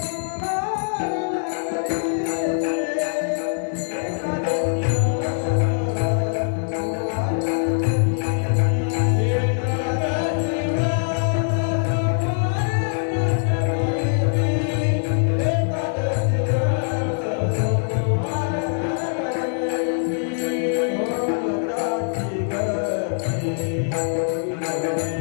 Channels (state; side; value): silent; right; 64 dB below the other